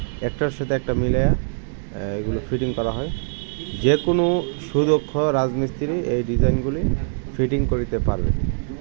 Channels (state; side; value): silent; left; digital silence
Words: একটার সাথে একটা মিলিয়ে এগুলো ফিটিং করা হয়। যে কোনো সুদক্ষ রাজমিস্ত্রি এই ডিজাইনগুলি ফিটিং করিতে পারবে।